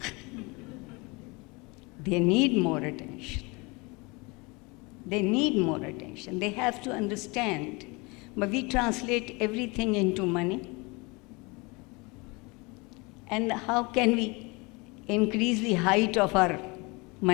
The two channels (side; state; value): right; quieter; 26.9 dB